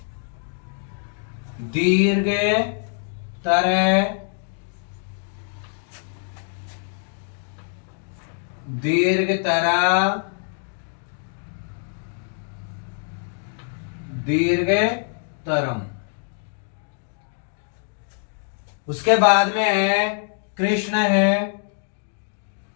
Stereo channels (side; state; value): right; silent; 59 dB below the other